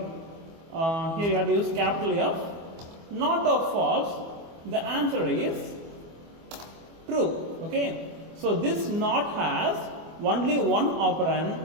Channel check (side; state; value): left; late; 24 ms